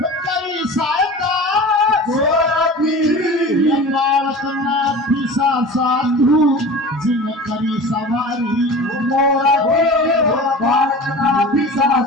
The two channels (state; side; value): normal; both; correlation 0.36